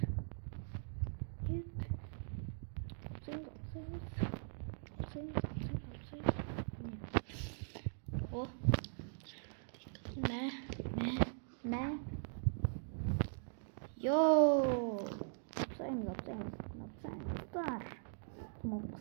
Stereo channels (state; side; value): silent; left; digital silence